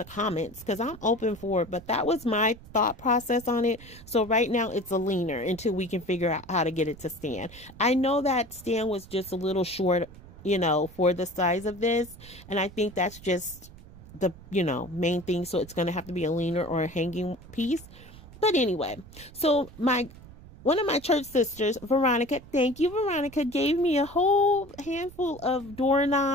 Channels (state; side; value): noise; right; rumble, 19 dB below the sound